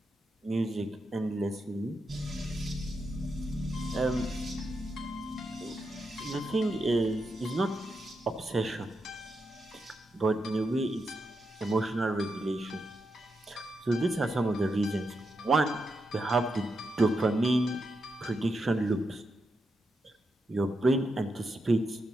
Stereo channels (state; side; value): normal; both; correlation 0.85